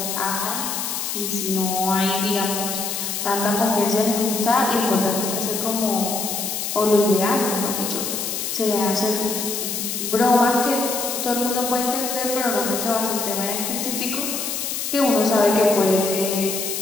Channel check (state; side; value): noise; left; hiss, 3 dB below the sound